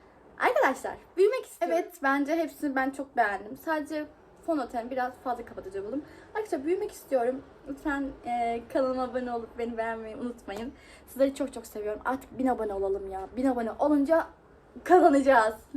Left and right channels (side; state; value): both; identical; correlation 1.00